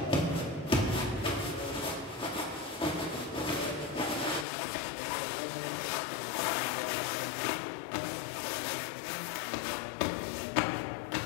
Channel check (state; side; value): drops out; right; at 4.5 s